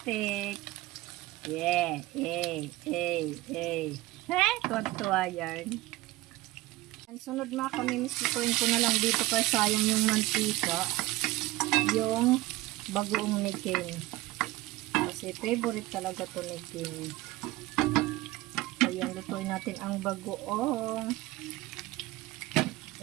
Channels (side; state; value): left; quieter; 18.9 dB